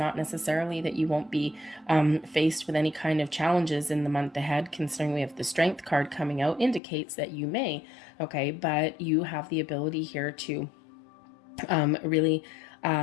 necessarily that you won't be faced with any kind of challenges in the month ahead, considering we have the Strength card coming out, indicates that you may, okay? But you have the ability here to really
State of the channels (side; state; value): right; drops out; at 6.8 s